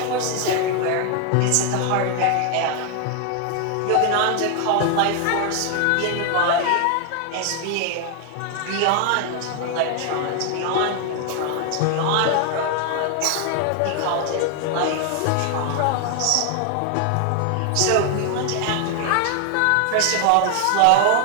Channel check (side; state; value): both; different; correlation 0.00